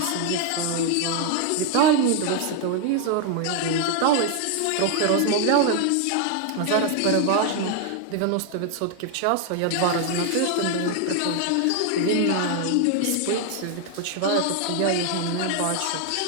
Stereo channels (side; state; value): both; different; correlation 0.00